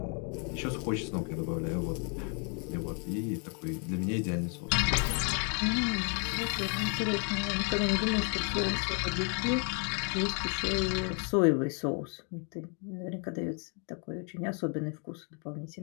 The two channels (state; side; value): quieter; right; 37.8 dB